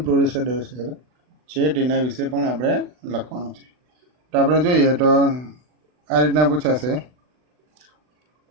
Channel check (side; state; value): left; late; 40 ms